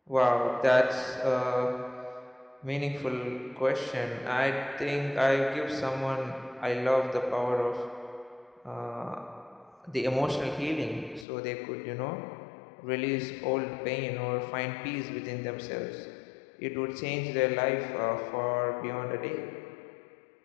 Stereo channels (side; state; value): right; drops out; at 11.2 s